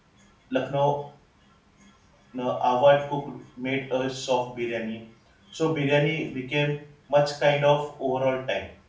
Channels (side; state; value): both; identical; correlation 1.00